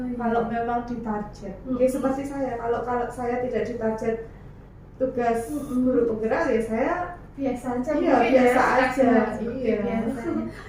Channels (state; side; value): identical; both; correlation 1.00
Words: kalau memang ditarget. Seperti saya, kalau saya tidak ditarget tugas guru penggerak ya saya biasa aja. Biasa aja.